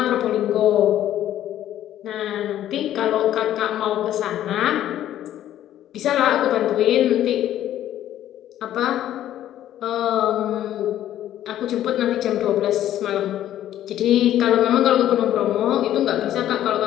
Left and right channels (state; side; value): quieter; right; 12.1 dB